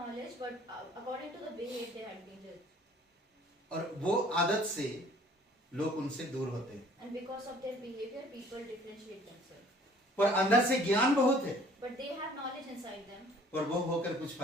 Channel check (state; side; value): normal; both; correlation 0.55